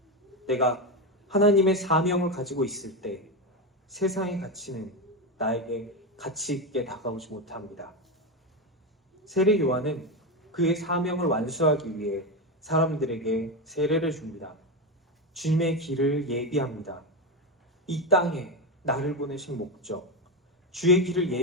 내가 하나님의 사명을 가지고 있을 때 세상의 가치는 나에게 가치 있게 다가오지 못합니다. 세례 요한은 그의 사명을 완수하기 위해 사람들에게 세례를 줍니다. 주님의 길을 예비합니다. 이 땅에 나를 보내신 목적, 주의 길을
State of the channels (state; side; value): normal; both; correlation 0.13